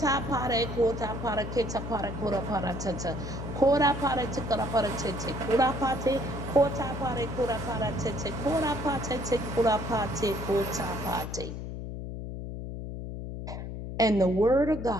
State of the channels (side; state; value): left; noise; hum, 7 dB below the sound